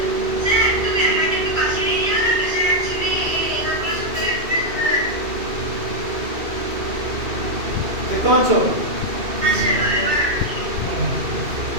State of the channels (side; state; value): left; late; 2.7 ms